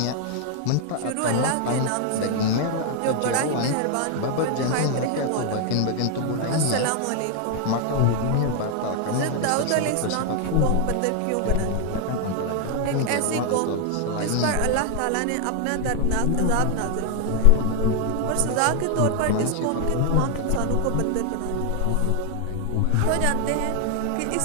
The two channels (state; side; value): different; both; correlation 0.00